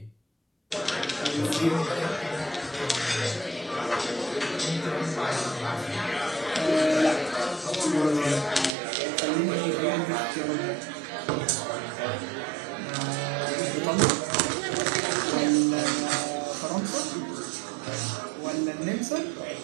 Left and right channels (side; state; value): left; drops out; at 8.7 s